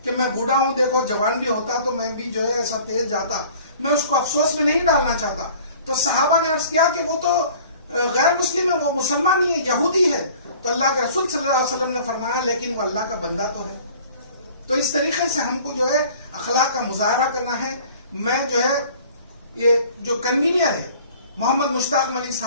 کہ میں بوڑھا ہوں، دیکھو جوان بھی ہوتا تو میں بھی جو ہے ایسا تیز جاتا، میں اس کو افسوس میں نہیں ڈالنا چاہتا۔ تو صحابہ نے عرض کیا کہ وہ تو غیر مسلم ہے، وہ مسلمان نہیں ہے، یہودی ہے۔ تو اللہ کے رسول صلی اللہ علیہ وسلم نے فرمایا لیکن وہ اللہ کا بندہ تو ہے۔ تو اس طریقے سے ہم کو جو ہے اخلاق کا مظاہرہ کرنا ہے. میں جو ہے یہ جو کنوینئر ہے محمد مشتاق ملک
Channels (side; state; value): both; inverted; correlation -0.49